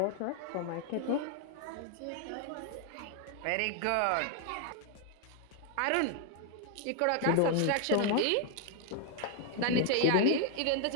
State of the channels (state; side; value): different; both; correlation 0.00